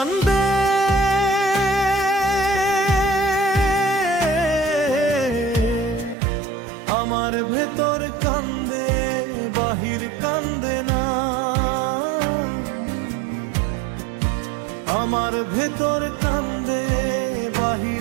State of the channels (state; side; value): drops out; left; at 6.2 s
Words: আমার ভেতর কান্দে, বাহির কান্দে না। আমার ভেতর কান্দে,